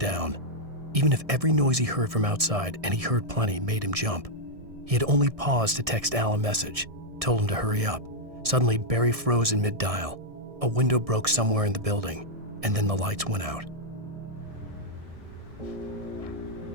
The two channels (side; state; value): left; late; 1.6 ms